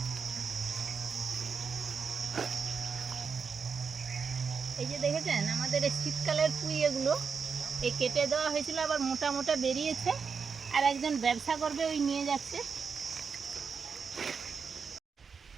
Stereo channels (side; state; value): left; quieter; 5.7 dB